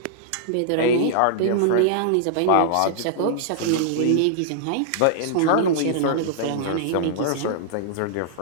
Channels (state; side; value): different; both; correlation -0.01